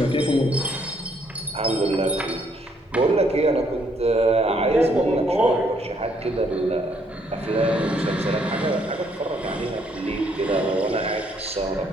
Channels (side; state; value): both; normal; correlation 0.69